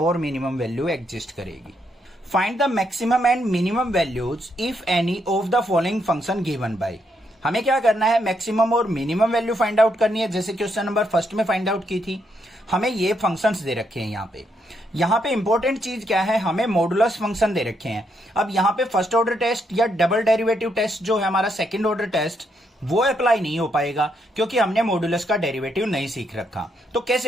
minimum value exist करेगी। Find the maximum and minimum values if any of the following function given by. हमें क्या करना है मैक्सिमम और मिनिमम वैल्यू फाइंड आउट करनी है, जैसे क्वेश्चन नंबर फर्स्ट में फाइंड आउट की थी। हमें ये फंक्शंस दे रखे हैं यहाँ पे इंपॉर्टेंट चीज क्या है, हमें मॉडुलस फंक्शन दे रखे हैं। अब यहाँ पे फर्स्ट ऑर्डर टेस्ट या डबल डेरिवेटिव टेस्ट जो है हमारा सेकंड ऑर्डर टेस्ट वो अप्लाई नहीं हो पाएगा, क्योंकि हमने मॉडुलस का डेरिवेटिव नहीं सीख रखा। तो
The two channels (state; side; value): normal; both; correlation 0.77